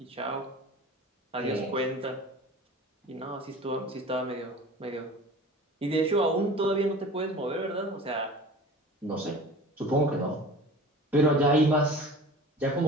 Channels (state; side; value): normal; both; correlation 0.40